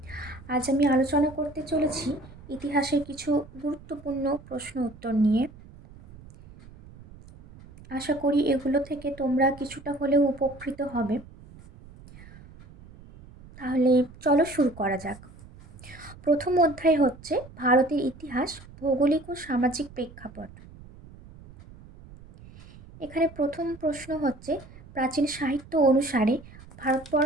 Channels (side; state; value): right; noise; rumble, 20 dB below the sound